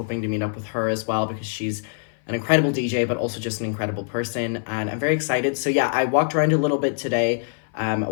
to meet up with her as well, because she's an incredible DJ, but also just an incredible person, and I'm very excited. So yeah, I walked around a little bit today,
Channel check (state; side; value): silent; right; 57 dB below the other